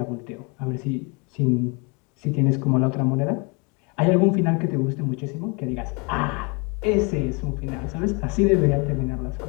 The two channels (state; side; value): quieter; right; 31.6 dB